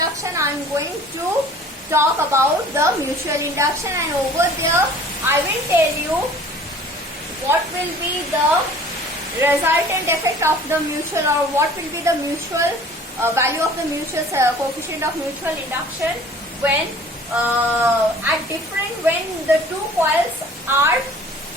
I am going to talk about the mutual induction, and over there I will tell you what will be the resultant effect of the mutual, or what will be the mutual value of the mutual coefficient of mutual induction when when the two coils are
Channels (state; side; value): normal; both; correlation 0.49